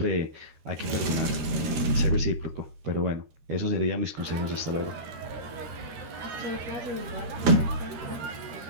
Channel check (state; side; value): late; left; 13 ms